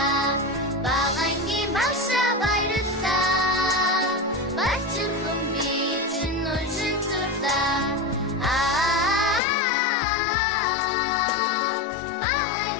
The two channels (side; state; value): right; drops out; at 9.4 s